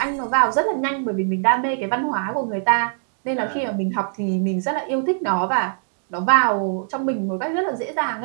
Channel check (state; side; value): silent; left; digital silence